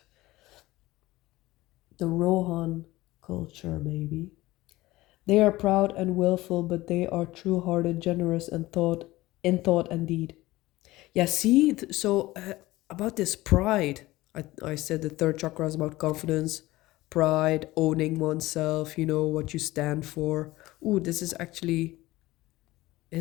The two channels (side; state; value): right; quieter; 18.3 dB